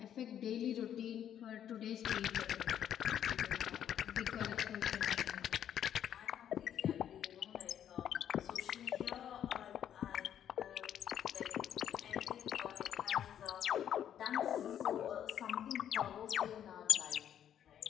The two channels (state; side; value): quieter; right; 9.9 dB